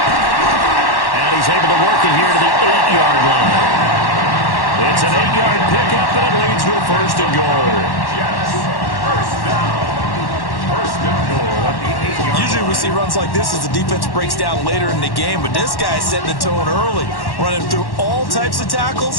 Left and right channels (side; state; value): right; late; 1.1 ms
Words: And he's able to work it here to the 8-yard line. It's an 8-yard pickup, and it leads to a 1st and goal. Jets, first down. 1st and goal at the 8-yard line. Usually we see runs like this as the defense breaks down later in the game, but this guy's setting the tone early, running through all types of